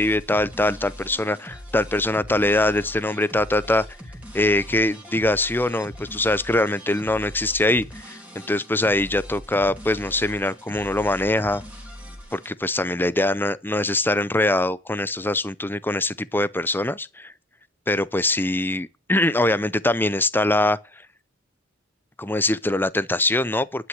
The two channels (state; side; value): normal; both; correlation 0.57